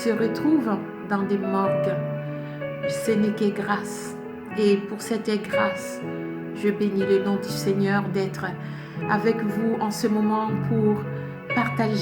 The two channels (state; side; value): identical; both; correlation 1.00